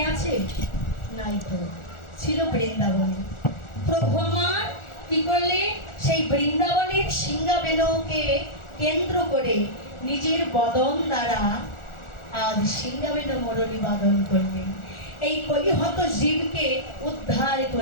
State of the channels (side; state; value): right; late; 1.4 ms